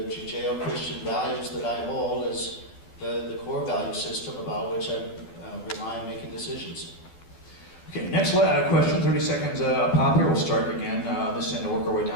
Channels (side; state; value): right; late; 12 ms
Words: Judeo-Christian values that I hold as the core value system about which I rely on making decisions. Okay, next question, 30 seconds pop here. We'll start again this end and work our way